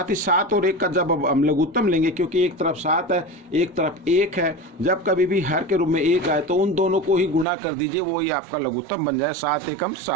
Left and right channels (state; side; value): drops out; left; at 7.5 s